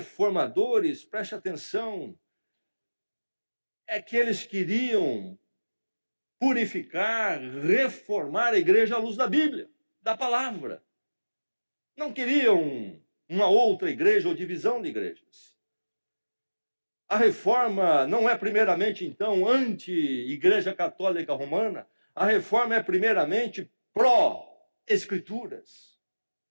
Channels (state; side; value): inverted; both; correlation -1.00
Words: preste atenção, é que eles queriam purificar, reformar a igreja à luz da Bíblia, da palavra. Não queriam uma outra igreja ou divisão de igrejas. A reforma não é primeiramente, então, anti-igreja católica romana. A reforma é primeiramente pró-escrituras.